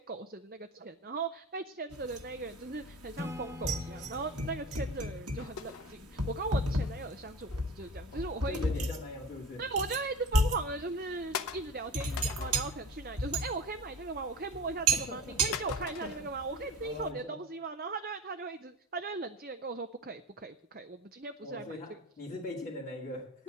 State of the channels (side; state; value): both; normal; correlation 0.34